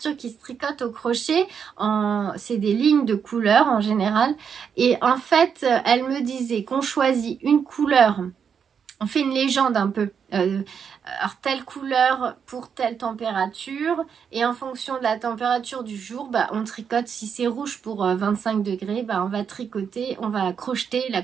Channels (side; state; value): left; quieter; 7.1 dB